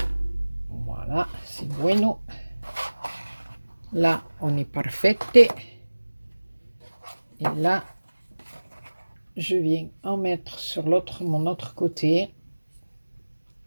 bueno. Là, on est parfaite. Et là, je viens en mettre sur mon autre côté.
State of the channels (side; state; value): both; inverted; correlation -1.00